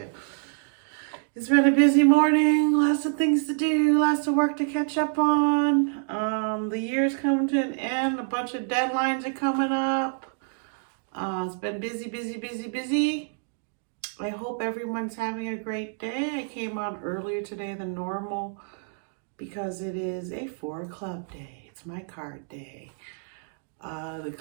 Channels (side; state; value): left; silent; digital silence